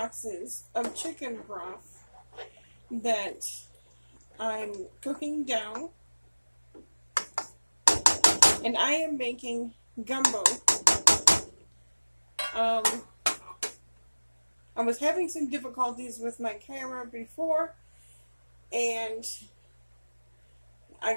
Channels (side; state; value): both; inverted; correlation -1.00